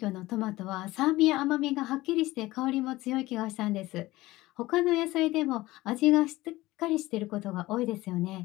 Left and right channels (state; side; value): quieter; right; 18.4 dB